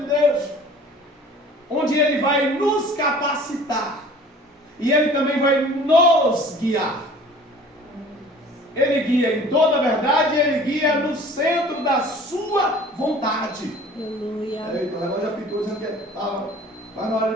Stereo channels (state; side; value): normal; both; correlation 0.47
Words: de Deus, onde Ele vai nos capacitar. E Ele também vai nos guiar. Ele guia em toda a verdade, Ele guia no centro da sua vontade. Aleluia. Eita, o relógio já pitou dizendo que estava quase na hora